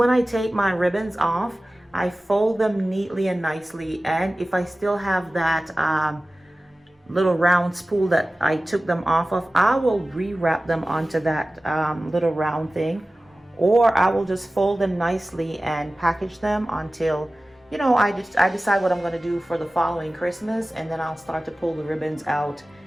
I take my ribbons off, I fold them neatly and nicely. And if I still have that little round spool that I took them off of, I will re-wrap them onto that little round thing. Or I will just fold them nicely and package them until, you know, I decide what I'm going to do for the following Christmas, and then I'll start to pull the ribbons out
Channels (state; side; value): normal; both; correlation 0.96